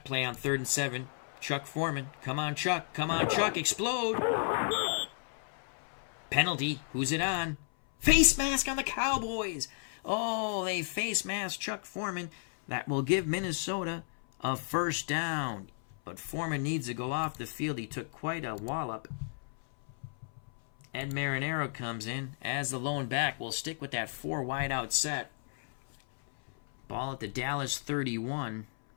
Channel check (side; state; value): right; silent; 56 dB below the other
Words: play on 3rd and 7. Chuck Foreman. Come on, Chuck. Come on, Chuck. Explode. Penalty. Who's it on? Face mask on the Cowboys. Oh, they face mask Chuck Foreman. That will give Minnesota a first down. But Foreman needs to go off the field. He took quite a wallop. Ed Marinaro comes in as the lone back. We'll stick with that 4 wide out set. Ball at the Dallas 31.